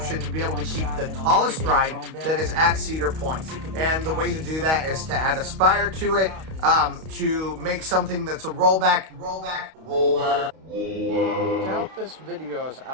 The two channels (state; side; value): late; left; 32 ms